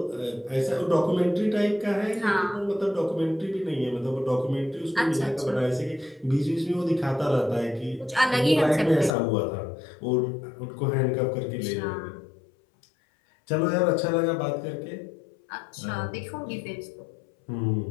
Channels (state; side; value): drops out; right; at 9.1 s